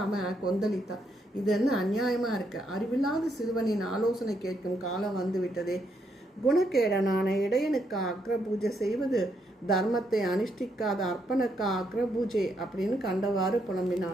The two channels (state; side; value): normal; both; correlation 0.77